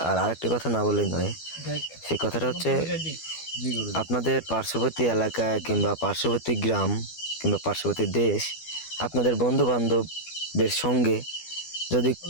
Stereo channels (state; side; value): late; right; 12 ms